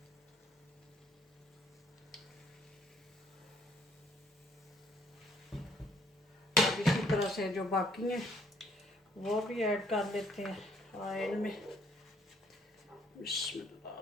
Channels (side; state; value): both; normal; correlation 0.65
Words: तरह से जो बाकी हैं वो भी ऐड कर लेते हैं ऑयल में।